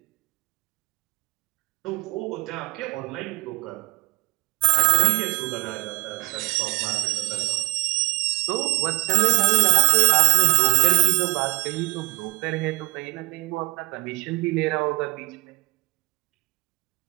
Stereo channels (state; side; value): quieter; left; 24.7 dB